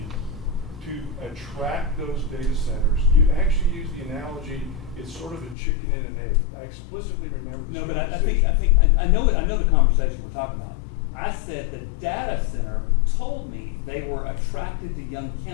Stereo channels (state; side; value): drops out; right; at 5.6 s